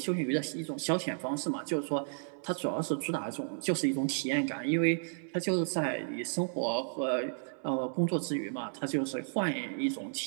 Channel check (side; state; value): left; silent; 56 dB below the other